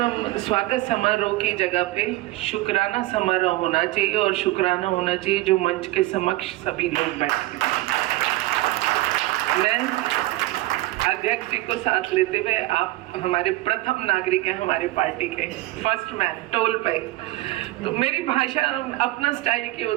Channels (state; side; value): quieter; left; 18.4 dB